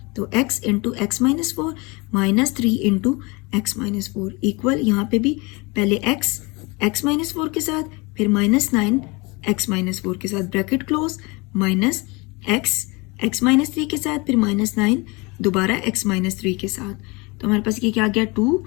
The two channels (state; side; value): quieter; right; 26.7 dB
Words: तो x into x minus 4 minus 3 into x minus 4 equal, यहाँ पे भी पहले x माइनस 4 के साथ, फिर माइनस 9 x माइनस 4 के साथ, bracket close, minus x minus 3 के साथ, फिर माइनस 9 दोबारा x माइनस 3 के साथ। तो हमारे पास ये क्या आ गया,